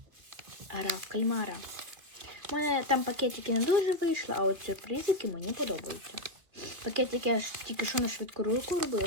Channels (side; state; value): left; late; 2.1 ms